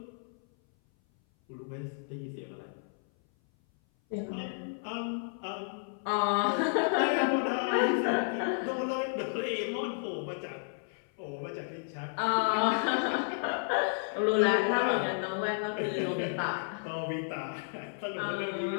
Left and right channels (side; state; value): right; silent; 56 dB below the other